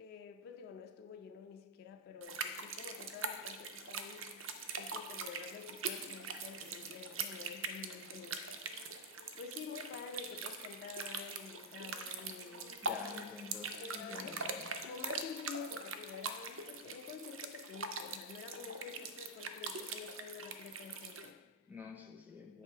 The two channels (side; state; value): both; normal; correlation -0.05